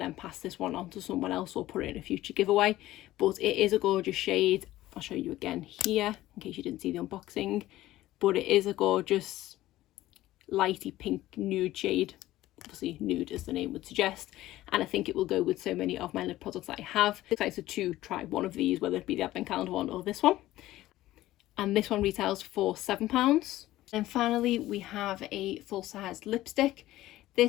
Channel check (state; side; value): quieter; right; 15.6 dB